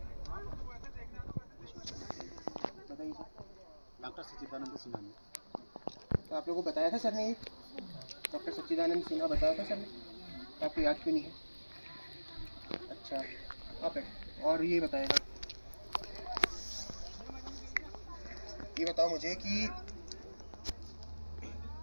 बताइए सर। डॉक्टर सच्चिदानंद सिन्हा ने। तो आप लोगों को बताया था सर ने, ये डॉक्टर सच्चिदानंद सिन्हा बताया था सर ने, तो आपको याद क्यों नहीं है? अच्छा आप और ये बताएगा, ये बताओ मुझे कि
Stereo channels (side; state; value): both; inverted; correlation -1.00